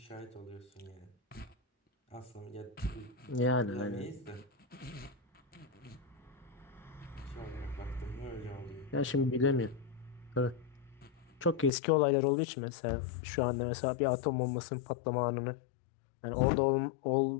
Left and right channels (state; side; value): drops out; right; at 11.7 s